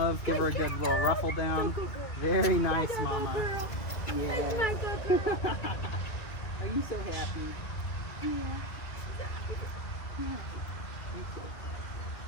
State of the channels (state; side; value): late; right; 2.5 ms